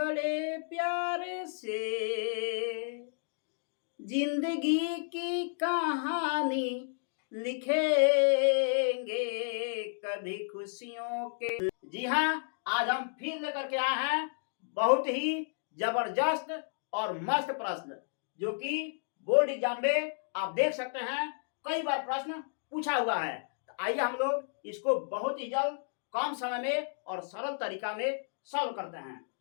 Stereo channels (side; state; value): right; silent; digital silence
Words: प्यार से जिंदगी की कहानी लिखेंगे, कभी खुशियों के। जी हाँ, आज हम फिर लेकर के आए हैं बहुत ही जबरदस्त और मस्त प्रश्न, जो कि बोर्ड एग्जाम में आप देख सकते हैं कई बार प्रश्न पूछा हुआ है। तो आइए हम लोग इसको बहुत ही जल्द, कम समय में और सरल तरीका में सॉल्व करते हैं।